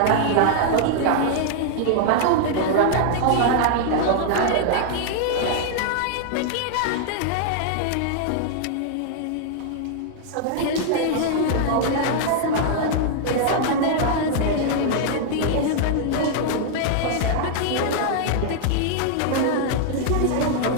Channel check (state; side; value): different; both; correlation 0.00